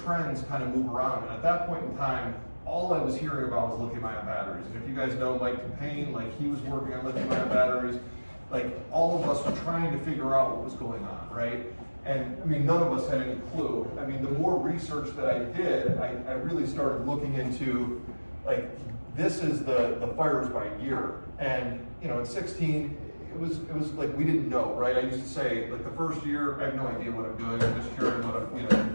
kind of move around, and at that point in time, all I was hearing about was lithium-ion batteries. And if you guys know Mike Payne, like he was working on lithium-ion batteries, like all of us were trying to figure out what was going on, right? And I mean, none of us had any clue. I mean, the more research that I did, I really started looking into, like, this is the fires by year. And in 16, it was like we didn't know, right? I used to say, like, the first year, I have no idea what I'm doing. I'm just hearing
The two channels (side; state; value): both; inverted; correlation -1.00